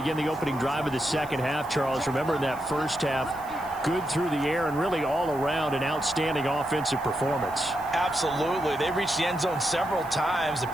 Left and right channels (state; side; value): noise; right; hiss, 22 dB below the sound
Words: the opening drive of the second half, Charles, remember in that first half, good through the air and really all around an outstanding offensive performance. Absolutely. They reached the end zone several times. The